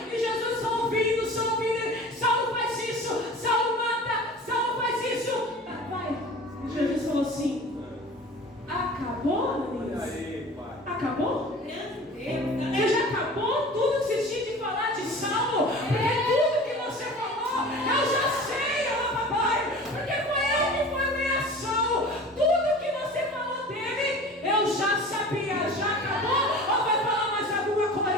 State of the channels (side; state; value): both; normal; correlation 0.39